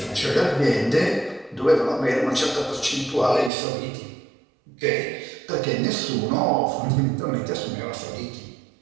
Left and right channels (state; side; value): drops out; left; at 3.5 s